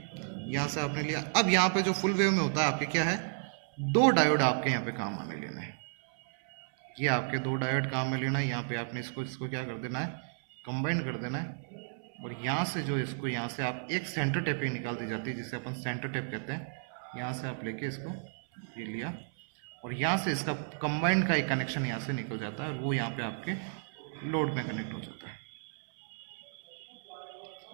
यहाँ से आपने लिया। अब यहाँ पे जो फुल वेव में होता है आपके क्या है, 2 डायोड आपके यहाँ पे काम में लेना है, ये आपके 2 डायोड काम में लेना है। यहाँ पे आपने इसको क्या कर देना है, कंबाइन कर देना है। और यहाँ से जो इसको यहाँ से आप एक सेंटर टेप पे निकाल दी जाती है, जिसे अपन सेंटर टेप कहते हैं। यहाँ से आप लेके इसको ये लिया, और यहाँ से इसका कंबाइंड का एक कनेक्शन यहाँ से निकल जाता है, और वो यहाँ पे आपके लोड में कनेक्ट हो जाता है।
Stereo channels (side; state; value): left; silent; 56 dB below the other